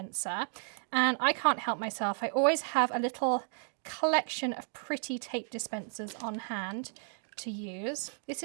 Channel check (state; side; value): silent; left; 55 dB below the other